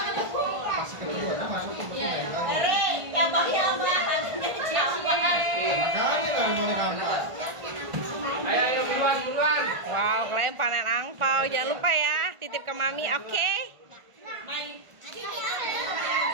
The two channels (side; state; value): left; late; 1.5 ms